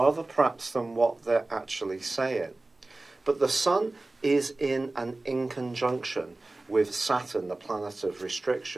perhaps than what they're actually saying. But the Sun is in conjunction with Saturn, the planet of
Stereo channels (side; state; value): left; quieter; 3.0 dB